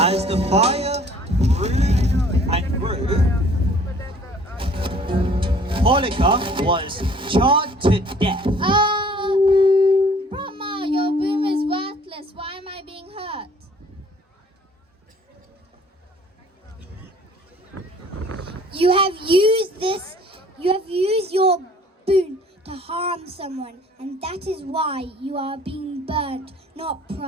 the fire grew and grew, Holika was charred to death. Brahma, your boom is worthless. Why am I being hurt? You have used your boon to harm someone, and that is why you are being burnt, not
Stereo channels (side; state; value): both; normal; correlation 0.54